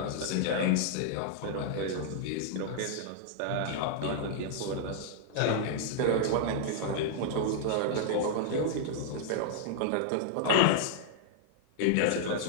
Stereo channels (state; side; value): different; both; correlation -0.01